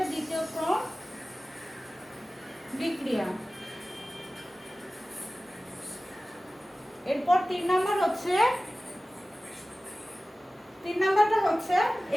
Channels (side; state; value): both; normal; correlation 0.97